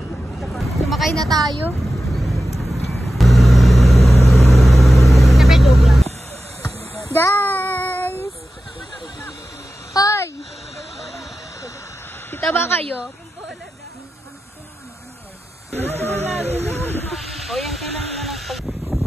Sumakay na tayo. Guys! Hoy! Kita ba kayo? O yan kailangan na lang pag...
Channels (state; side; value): normal; both; correlation 0.93